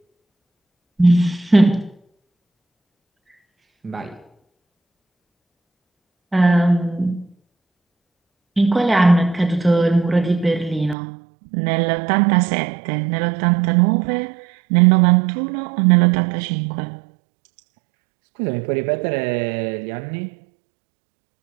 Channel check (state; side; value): drops out; left; at 11.0 s